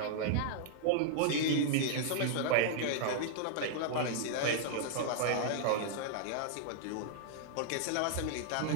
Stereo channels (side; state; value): both; different; correlation -0.01